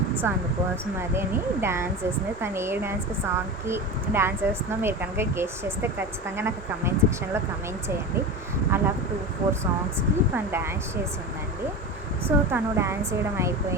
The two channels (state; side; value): normal; both; correlation 0.27